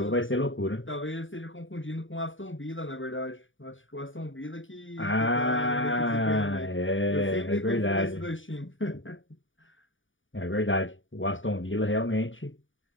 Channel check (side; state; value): right; late; 0.57 ms